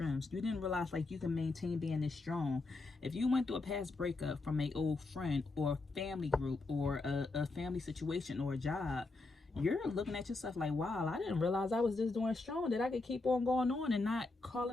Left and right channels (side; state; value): right; quieter; 3.4 dB